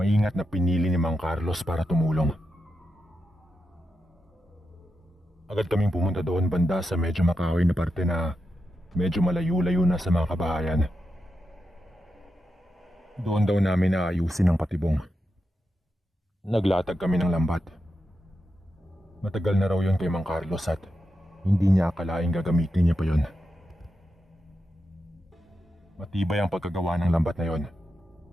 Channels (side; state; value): both; normal; correlation 0.87